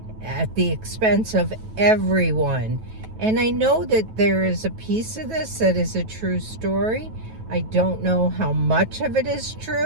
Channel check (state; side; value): late; left; 9.2 ms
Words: at the expense of everyone. And I know that there is a piece of this that is a true story. I don't know how much of it is